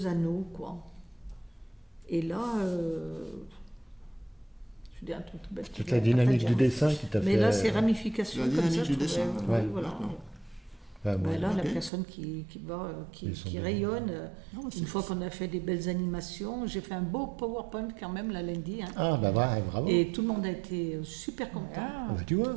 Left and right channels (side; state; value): left; drops out; at 11.9 s